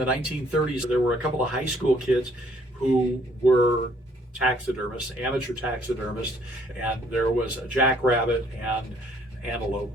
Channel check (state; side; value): normal; both; correlation 0.63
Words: 1930s. There were a couple of high school kids who were taxidermists, amateur taxidermists, and there was a jackrabbit and antelope